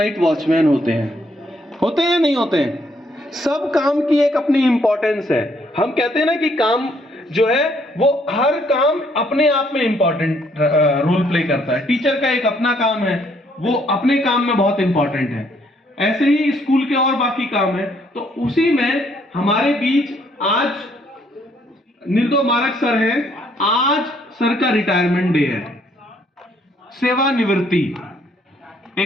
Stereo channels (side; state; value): both; normal; correlation 0.68